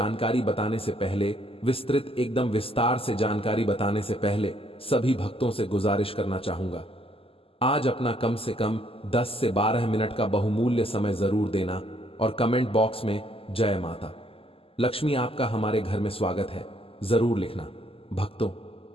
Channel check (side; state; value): right; late; 0.27 ms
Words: बताने से पहले, विस्तृत एकदम विस्तार से जानकारी बताने से पहले सभी भक्तों से गुजारिश करना चाहूंगा, आज अपना कम से कम 10 से 12 मिनट का बहुमूल्य समय जरूर देना और कमेंट बॉक्स में जय माता लक्ष्मी आपका हमारे घर में स्वागत है जरूर लिखना। भक्तों